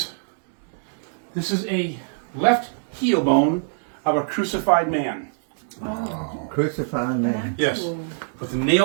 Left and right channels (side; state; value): left; silent; 63 dB below the other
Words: a left heel bone of a crucified man. Crucified man. Yes, with the